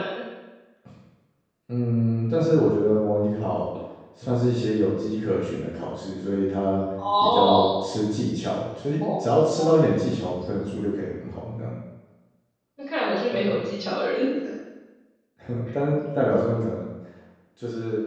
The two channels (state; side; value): identical; both; correlation 1.00